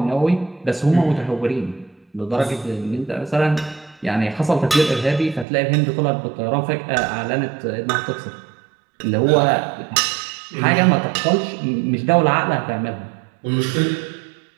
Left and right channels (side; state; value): left; drops out; at 5.5 s